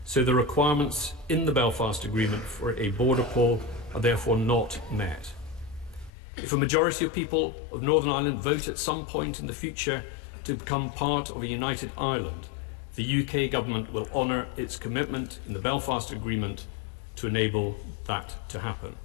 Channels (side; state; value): right; drops out; at 6.1 s